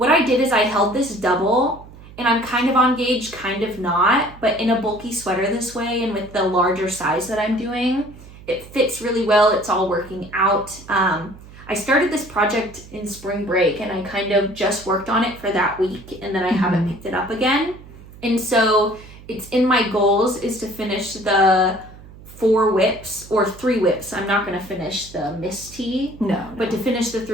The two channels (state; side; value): noise; right; hum, 19 dB below the sound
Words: I did is I held this double, and I'm kind of on gauge, kind of not, but in a bulky sweater this way, and with the larger size that I'm doing, it fits really well. It's all working out. I started this project in spring break, and I kind of just worked on it for that week, and then I haven't picked it up again. And so it's in my goals is to finish the 4 whips or 3 whips. I'm not going to finish the Miss T. No. But to finish the